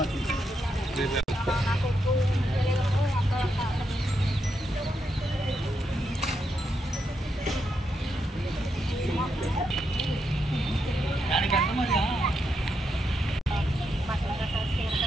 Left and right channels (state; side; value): normal; both; correlation 0.82